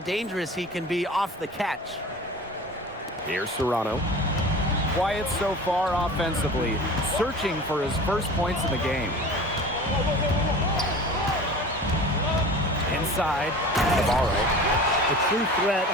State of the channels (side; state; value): both; normal; correlation 0.38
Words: he can be off the catch. Here's Serrano. Quiet so far offensively, searching for his first points in the game. Inside, Navarro. A true threat